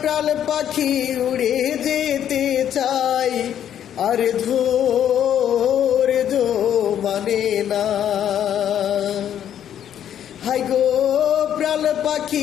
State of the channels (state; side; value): quieter; right; 10.0 dB